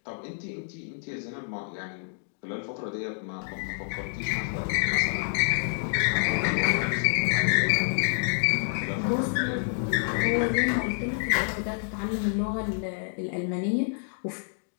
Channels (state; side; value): silent; right; digital silence